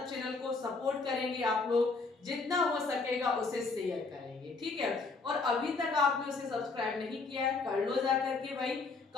चैनल को सपोर्ट करेंगे आप लोग, जितना हो सकेगा उसे शेयर करेंगे। ठीक है। और अभी तक आपने उसे सब्सक्राइब नहीं किया है, कर लो जा करके भाई,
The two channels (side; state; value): right; quieter; 4.0 dB